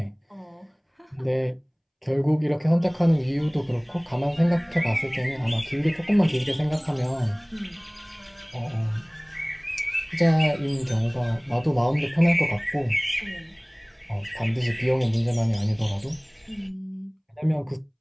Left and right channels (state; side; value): identical; both; correlation 1.00